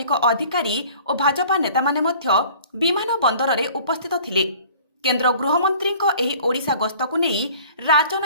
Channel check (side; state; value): both; inverted; correlation -0.50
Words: ଅଧିକାରୀ ଓ ଭାଜପା ନେତାମାନେ ମଧ୍ୟ ବିମାନ ବନ୍ଦରରେ ଉପସ୍ଥିତ ଥିଲେ। କେନ୍ଦ୍ର ଗୃହମନ୍ତ୍ରୀଙ୍କ ଏହି ଓଡ଼ିଶା ଗସ୍ତକୁ ନେଇ